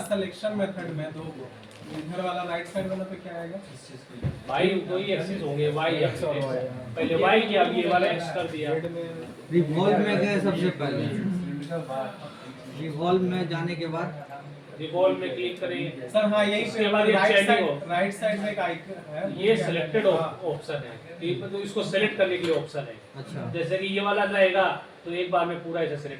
सिलेक्शन मेथड में, दो इधर वाला राइट साइड वाला पे क्या आएगा? Y दो ही एक्सिस होंगे, Y एक्सिस। पहले Y किया, अब ये वाला X कर दिया। रिवॉल्व में गए सबसे पहले, रिवॉल्व में जाने के बाद रिवॉल्व में क्लिक करेंगे सर हाँ यही उसके बाद ये चेंजिंग हो। राइट साइड में एक आइकन है, ये सिलेक्टेड ऑप्शन है, तो इसको सेलेक्ट करने के लिए ऑप्शन है। अच्छा जैसे कि ये वाला रहेगा तो एक बार में पूरा ऐसे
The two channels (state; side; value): identical; both; correlation 1.00